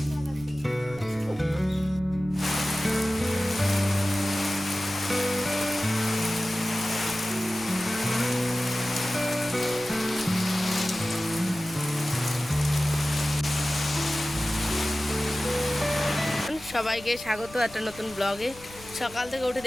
সবাইকে স্বাগত একটা নতুন ব্লগে। সকাল থেকে উঠে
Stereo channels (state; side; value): noise; left; rumble, 20 dB below the sound